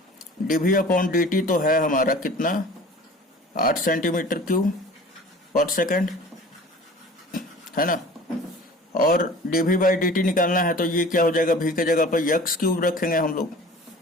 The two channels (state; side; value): normal; both; correlation 0.43